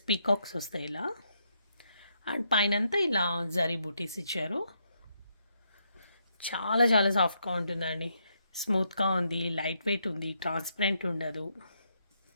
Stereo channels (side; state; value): both; inverted; correlation -0.78